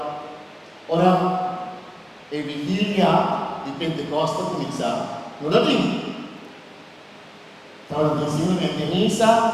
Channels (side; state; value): both; identical; correlation 1.00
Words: ora e vigilia di Pentecoste comincia lunedì. Stavo insieme a